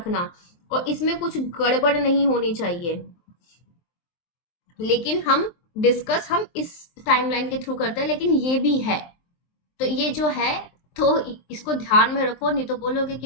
और इसमें कुछ गड़बड़ नहीं होनी चाहिए। लेकिन हम इस टाइमलाइन के थ्रू करते हैं, लेकिन ये भी है, तो ये जो है, तो इसको ध्यान में रखो, नहीं तो बोलोगे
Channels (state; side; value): late; right; 23 ms